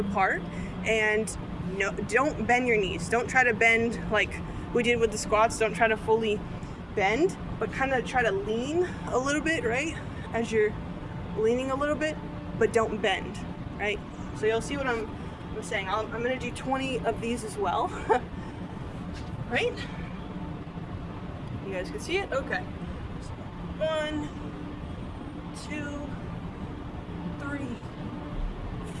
and no, don't bend your knees. Don't try to bend like we did with the squats. Don't try to fully bend, but kind of try to lean a little bit, right? As you're leaning a little bit, but don't bend, right? So you'll see what I'm saying. I'm gonna do 20 of these as well, right? You guys can see it? Okay. 1, 2, 3,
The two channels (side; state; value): both; identical; correlation 1.00